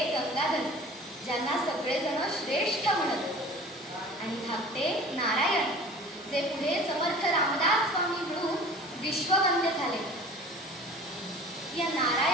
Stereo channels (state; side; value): normal; both; correlation 0.43